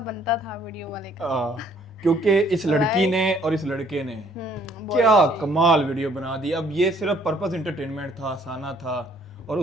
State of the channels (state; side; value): normal; both; correlation 0.62